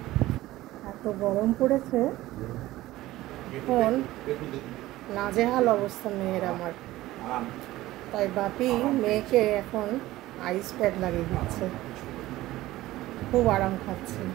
এত গরম পড়েছে, এখন নাজেহাল অবস্থা মেয়ের আমার। তাই বাপি মেয়েকে এখন আইস প্যাক লাগিয়ে দিচ্ছে, খুব আরাম খাচ্ছে।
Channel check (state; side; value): quieter; left; 16.6 dB